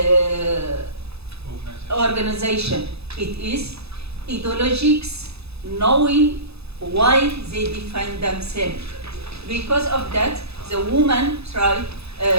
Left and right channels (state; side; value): late; left; 0.79 ms